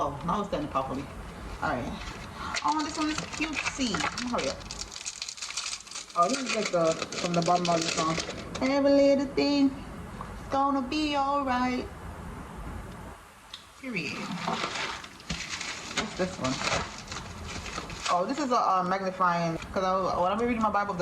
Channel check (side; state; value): both; identical; correlation 1.00